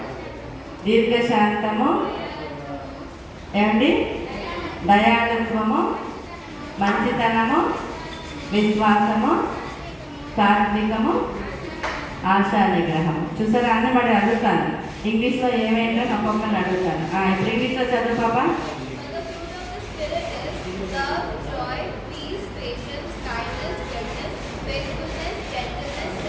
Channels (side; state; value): both; identical; correlation 1.00